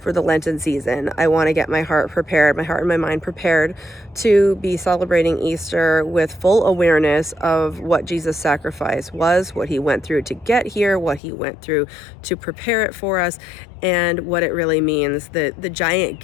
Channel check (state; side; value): drops out; right; at 11.2 s